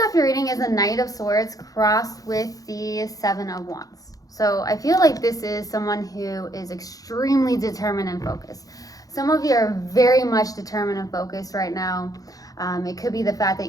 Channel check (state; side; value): late; right; 0.17 ms